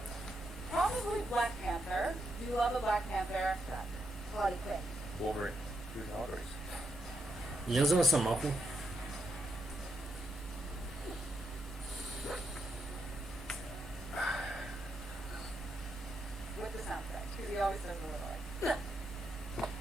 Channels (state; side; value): normal; both; correlation 0.81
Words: Probably Black Panther. Do you love a Black Panther? Harley Quinn. Wolverine. Who's Audrey's? Я за Росомаху. he always says a little like.